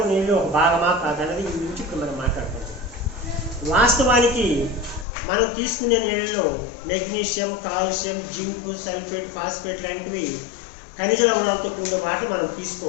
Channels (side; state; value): right; drops out; at 5.1 s